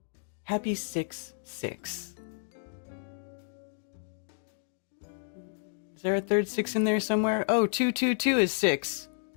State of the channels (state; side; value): silent; right; digital silence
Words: Happy 6-6. Is there a third 6 in there somewhere? Oh, 2 is 6.